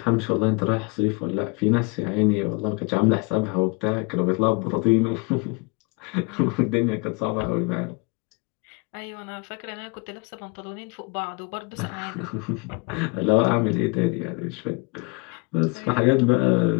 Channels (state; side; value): quieter; right; 29.2 dB